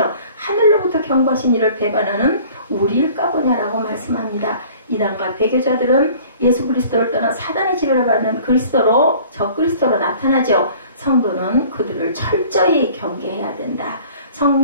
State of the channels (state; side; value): inverted; both; correlation -0.49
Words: 하늘로부터 경고하신 일을 배반하는 우리일까 보냐라고 말씀합니다. 이단과 배교자들은 예수 그리스도를 떠나 사단의 지배를 받는 그리스도로 적그리스도로 나타나죠. 성도는 그들을 철저히 경계해야 된다.